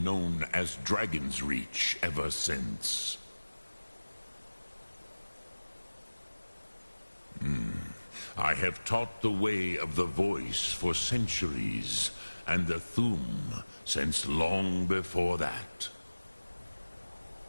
known as Dragon's Reach ever since. I have taught the way of the voice for centuries, and the Thum since long before that.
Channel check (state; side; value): inverted; both; correlation -1.00